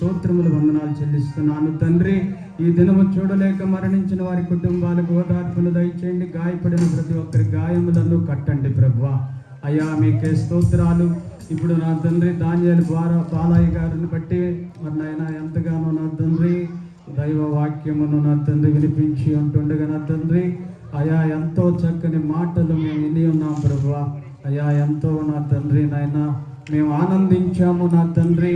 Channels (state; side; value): identical; both; correlation 1.00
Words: వందనాలు చెల్లిస్తున్నాను తండ్రి. ఈ దినము చూడలేక మరణించిన వారి కుటుంబాలకు ఓదార్పును దయచేయండి. గాయపడిన ప్రతి ఒక్కరి గాయములను కట్టండి ప్రభువా. అయ్యా మీకే స్తోత్రాలు. ఇప్పుడు నా తండ్రి ధాన్యాలు బాలయ్య గారిని బట్టి మరి నాయన ఎంతగానో నా తండ్రి దైవ వాక్యమును నా తండ్రి వినిపించి ఉంటుండగా నా తండ్రి అయా ఎంతో చక్కని మాటలు మేము విని ఉన్నాం ప్రభువా. అయ్యా ఎంతో నా తండ్రి నాయన మేము ఆనందించాము నా తండ్రి